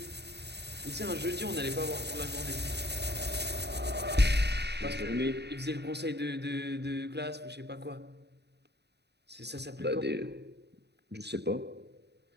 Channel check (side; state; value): left; late; 0.49 ms